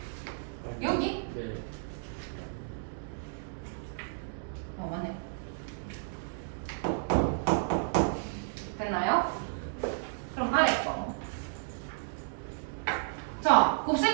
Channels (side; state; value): left; silent; digital silence